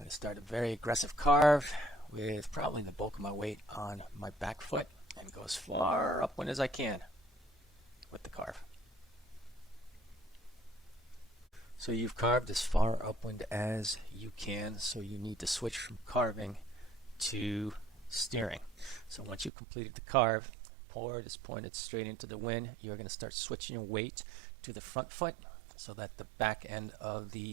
to start a very aggressive carve with probably the bulk of my weight on my back foot and go as far upwind as I can with the carve. So you've carved as far upwind as you can, so you need to switch from carving to steering. So once you've completed the carve, board is pointed straight into the wind, you're going to start switching your weight to the front foot so that the back end of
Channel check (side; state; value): left; drops out; at 19.5 s